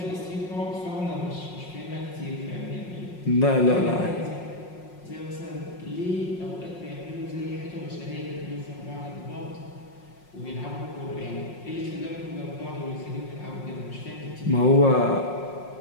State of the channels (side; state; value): right; late; 5.5 ms